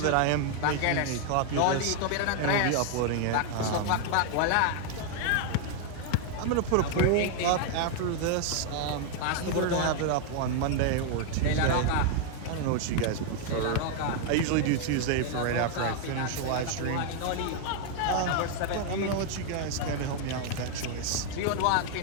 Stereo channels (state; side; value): different; both; correlation 0.00